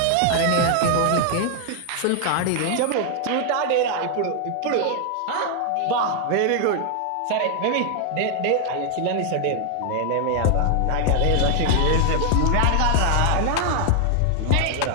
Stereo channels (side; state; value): both; different; correlation 0.00